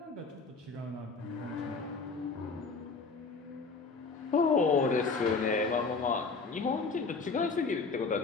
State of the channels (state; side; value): quieter; right; 4.4 dB